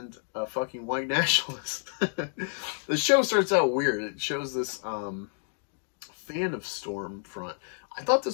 a fucking white nationalist. The show starts out weird. It shows this fan of Stormfront. I thought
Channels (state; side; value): silent; right; digital silence